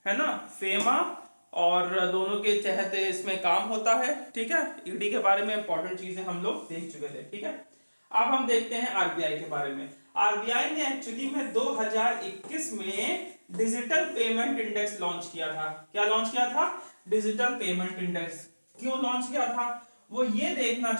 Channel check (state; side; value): inverted; both; correlation -1.00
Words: है ना, फेमा और दोनों के तहत इसमें काम होता है। ठीक है, ईडी के बारे में इंपॉर्टेंट चीजें हम लोग देख चुके थे। ठीक है, अब हम देखते हैं आरबीआई के बारे में। आरबीआई ने एक्चुअली में 2021 में डिजिटल पेमेंट इंडेक्स लॉन्च किया था। क्या लॉन्च किया था, डिजिटल पेमेंट इंडेक्स। क्यों लॉन्च किया था, वो ये देखना